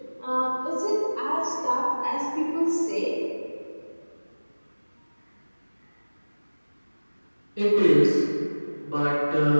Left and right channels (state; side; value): inverted; both; correlation -1.00